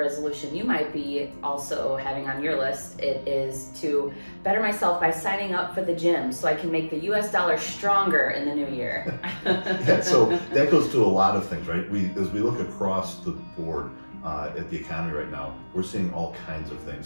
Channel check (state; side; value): inverted; both; correlation -1.00